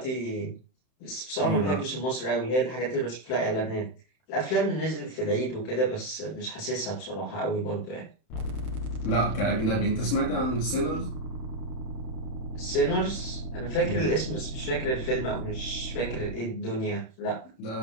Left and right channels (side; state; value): right; late; 31 ms